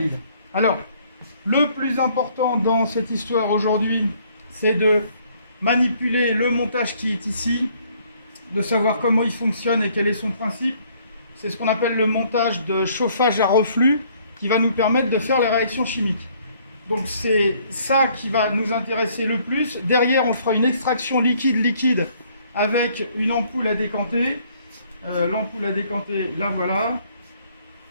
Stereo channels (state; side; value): inverted; both; correlation -0.63